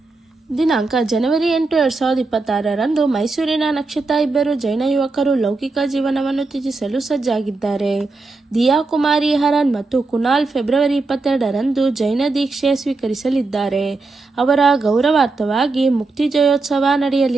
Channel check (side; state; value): left; quieter; 3.6 dB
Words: ದಿನಾಂಕ ಜನವರಿ 8, 2026ರಂದು ಮೈಸೂರಿನ ನಕ್ಷತ್ರ ಇಬ್ಬರು ಜೈನ ಯುವಕರು ಲೌಕಿಕ ಜೀವನವನ್ನು ತ್ಯಜಿಸಲು ಸಜ್ಜಾಗಿದ್ದಾರೆ. ದಿಯಾ ಕುಮಾರಿ ಹರನ್ ಮತ್ತು ಕುನಾಲ್ ಫೆಬ್ರವರಿ 22ರಂದು ಜೈನ ದೀಕ್ಷೆ ಸ್ವೀಕರಿಸಲಿದ್ದಾರೆ. ಅವರ ಗೌರವಾರ್ಥವಾಗಿ ಮುಕ್ತಿ ಜಯೋತ್ಸವ